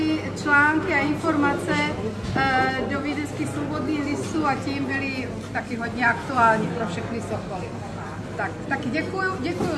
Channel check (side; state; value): both; identical; correlation 1.00